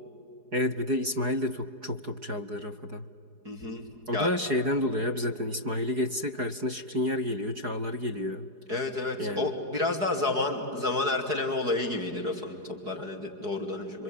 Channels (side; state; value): left; late; 4.8 ms